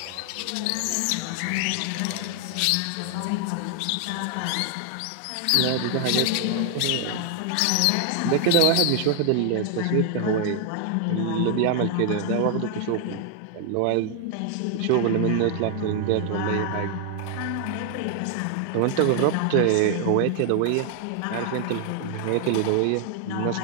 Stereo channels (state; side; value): different; both; correlation 0.00